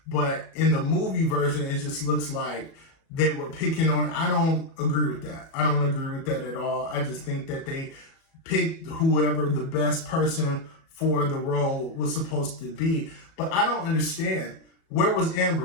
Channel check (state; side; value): late; right; 37 ms